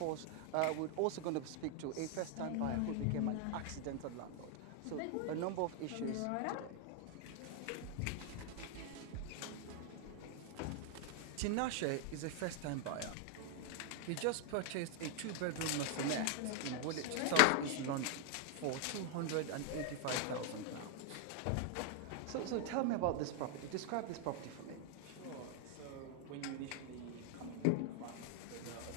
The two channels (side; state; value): both; different; correlation 0.00